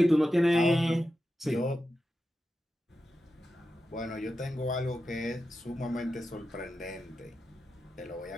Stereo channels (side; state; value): both; normal; correlation 0.91